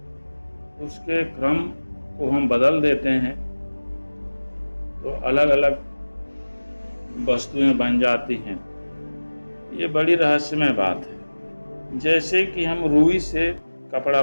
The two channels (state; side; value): inverted; both; correlation -1.00